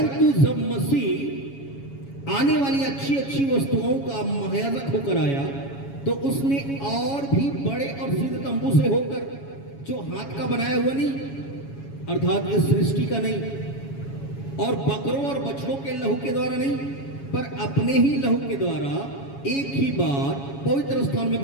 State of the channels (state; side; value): late; right; 7.2 ms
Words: जब मसीह आने वाली अच्छी अच्छी वस्तुओं का महायाजक होकर आया, तो उसने और भी बड़े और सिद्ध तंबू से होकर, जो हाथ का बनाया हुआ नहीं, अर्थात ये सृष्टि का नहीं, और बकरों और बछड़ों के लहू के द्वारा नहीं, पर अपने ही लहू के द्वारा एक ही बार पवित्र स्थान में